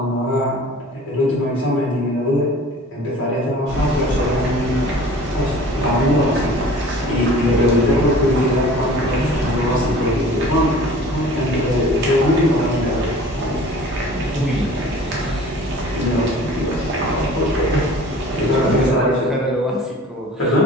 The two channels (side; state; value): both; normal; correlation 0.45